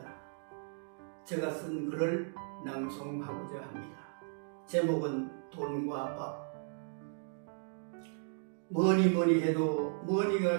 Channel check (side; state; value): left; silent; digital silence